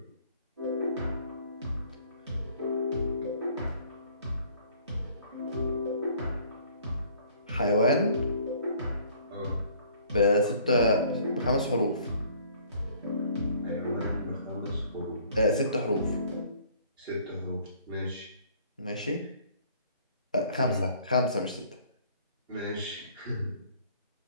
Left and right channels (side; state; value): both; inverted; correlation -0.57